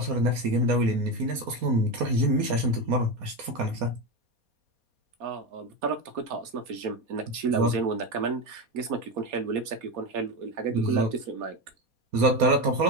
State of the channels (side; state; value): left; late; 4.2 ms